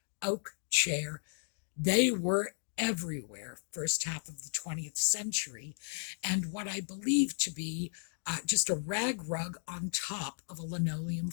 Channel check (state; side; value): silent; right; digital silence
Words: oak chair. They were everywhere first half of the 20th century, and what I believe to be just a rag rug on top of a linoleum